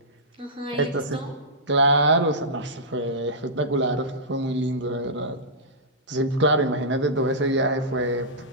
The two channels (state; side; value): normal; both; correlation -0.14